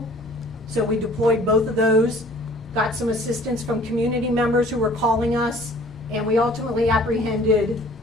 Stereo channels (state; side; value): normal; both; correlation 0.52